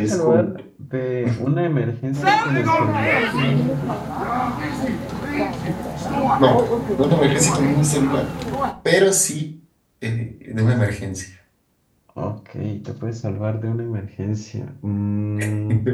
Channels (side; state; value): both; identical; correlation 1.00